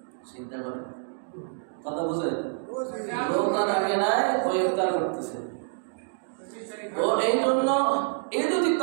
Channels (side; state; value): left; silent; digital silence